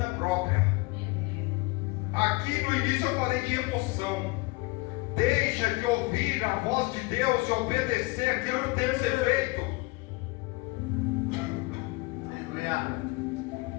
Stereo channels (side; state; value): right; quieter; 24.1 dB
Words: própria. Aqui no início eu falei de emoção. Deixa de ouvir a voz de Deus e obedecer aquilo que tem que ser feito,